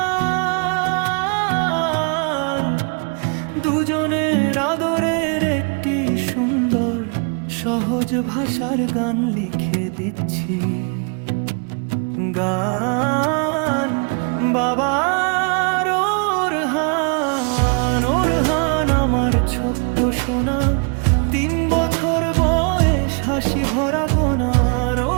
দুজনের আদরের একটি সুন্দর সহজ ভাষার গান লিখে দিচ্ছি। গান বাবার ওরহান। ওরহান আমার ছোট্ট সোনা, 3 বছর বয়স, হাসি ভরা কোনার।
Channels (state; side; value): quieter; left; 37.1 dB